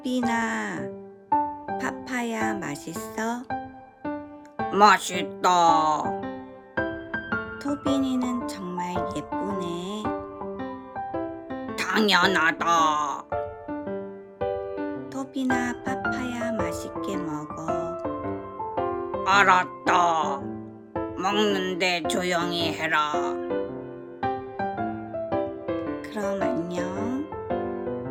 파파야 맛있어? 맛있다. 토빈이는 정말 예쁘네. 당연하다. 토비나, 파파야 맛있게 먹어. 알았다. 먹는데 조용히 해라. 그럼 안녕.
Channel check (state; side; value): identical; both; correlation 1.00